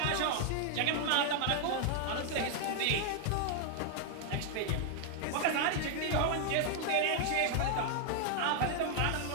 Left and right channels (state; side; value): different; both; correlation 0.00